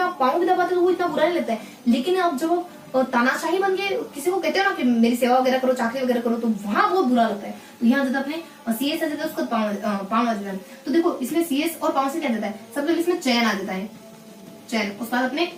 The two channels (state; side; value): identical; both; correlation 1.00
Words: आप पांव भी दबाते हो तो वो इतना बुरा नहीं लगता है। लेकिन अब जब तानाशाही बन के किसी को कहते हो ना कि मेरी सेवा वगैरह करो, चाकरी वगैरह करो, तो वहां बहुत बुरा लगता है। तो यहाँ जब अपने CS आ जाता है, उसका पांव आ जाता है। तो देखो, इसमें CS और पांव से क्या जाता है, सबसे पहले इसमें चयन आ जाता है, चयन। उसके बाद अपने